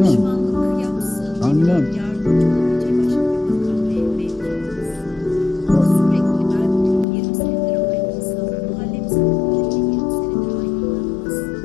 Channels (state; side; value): drops out; right; at 7.1 s